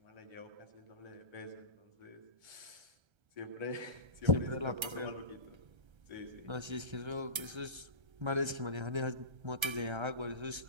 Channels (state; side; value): late; left; 1.3 ms